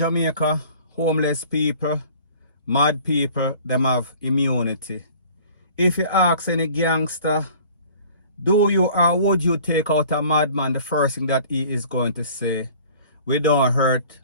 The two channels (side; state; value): both; inverted; correlation -0.49